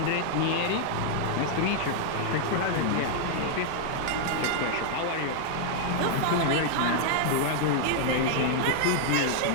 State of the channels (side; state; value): both; different; correlation 0.00